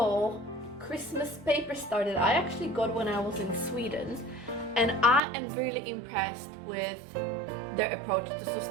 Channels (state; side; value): drops out; left; at 5.2 s